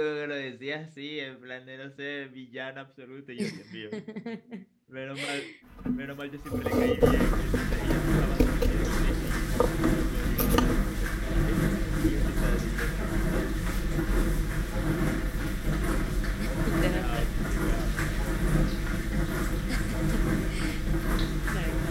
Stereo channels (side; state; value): both; identical; correlation 1.00